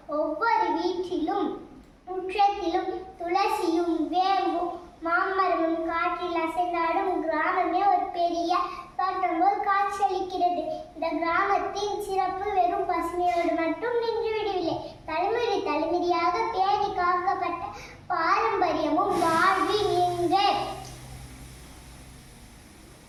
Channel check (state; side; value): identical; both; correlation 1.00